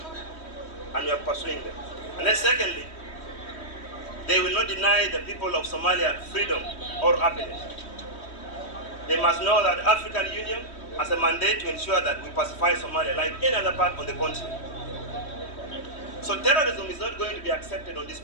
and we are pursuing them. And then secondly, they will not deny the people of Somalia freedom or happiness. They must know that the African Union has a mandate to ensure that we pacify Somalia like any other part of the continent. So terrorism is not going to be accepted on this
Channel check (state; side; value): late; right; 3.1 ms